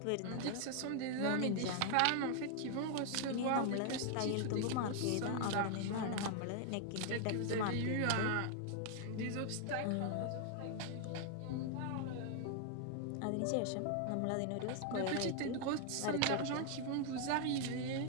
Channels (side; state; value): both; different; correlation 0.00